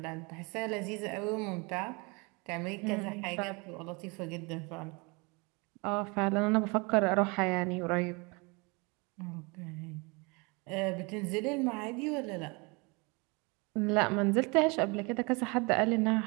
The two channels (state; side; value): quieter; left; 28.9 dB